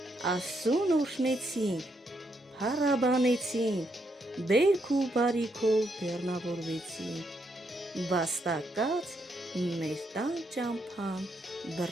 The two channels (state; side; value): normal; both; correlation 0.77